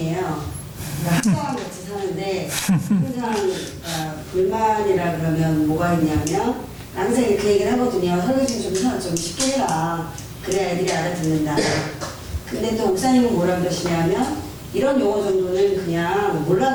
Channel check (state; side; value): identical; both; correlation 1.00